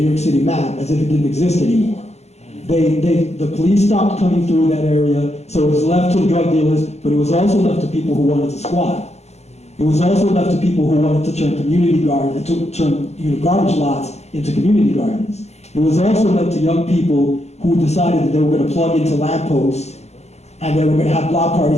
York City map, as if it didn't exist anymore. The police stopped coming through that area, so it was left to drug dealers, but it was also left to people who wanted to squat. It was also left to people who wanted to turn community gardens, to turn garbage lots into community gardens. It was also left to young people who decided that they were going to plug into lampposts and they were going to have block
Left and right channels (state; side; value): late; right; 0.32 ms